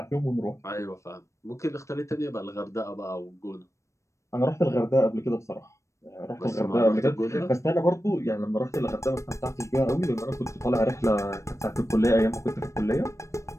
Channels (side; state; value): right; late; 0.15 ms